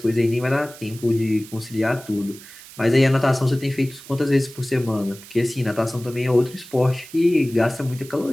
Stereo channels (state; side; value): noise; right; hiss, 18 dB below the sound